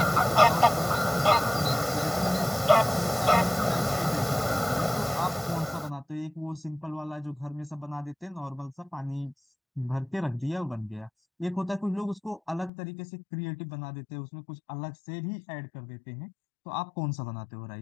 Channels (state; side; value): drops out; right; at 12.7 s